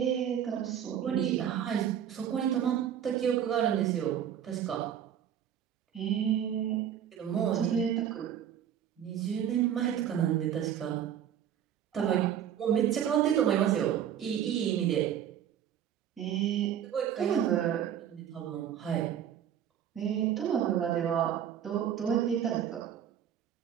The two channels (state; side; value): quieter; left; 9.6 dB